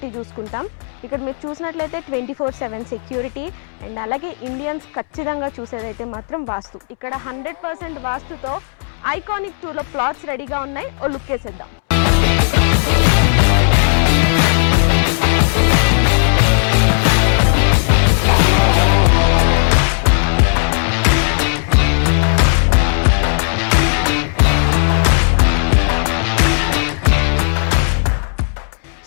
చూసుకుంటాం. ఇక్కడ మీరు చూసినట్లయితే 24/7 సెక్యూరిటీ అండ్ అలాగే ఇండియన్స్ ఖచ్చితంగా చూసేదైతే మాత్రం వాస్తు. ఇక్కడ 100% వాస్తుతో ఐకానిక్ 2లో ప్లాట్స్ రెడీగా ఉన్నాయి. ఓ లుక్ వేసేద్దాం.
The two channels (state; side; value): silent; right; 70 dB below the other